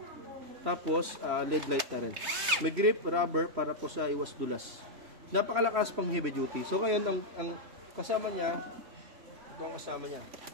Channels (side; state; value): left; late; 3.2 ms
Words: Tapos LED light na rin. May grip, rubber para po sa iwas dulas. Napakalakas pang heavy duty. So ngayon, ang kasama niya, ito ang kasama niya.